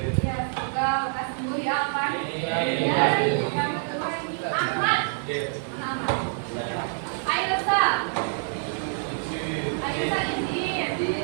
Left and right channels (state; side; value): silent; left; digital silence